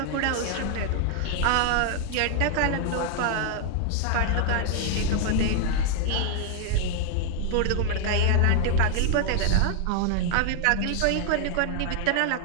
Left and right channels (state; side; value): different; both; correlation 0.00